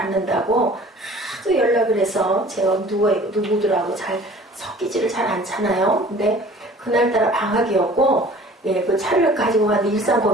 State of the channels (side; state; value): both; normal; correlation 0.48